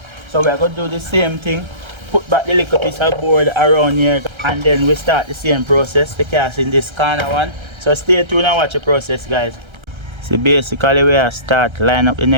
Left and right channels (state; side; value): late; left; 1.3 ms